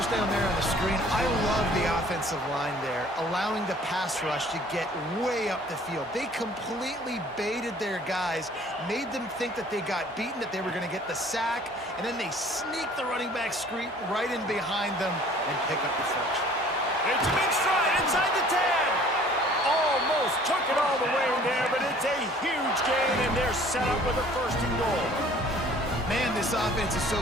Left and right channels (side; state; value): both; normal; correlation 0.53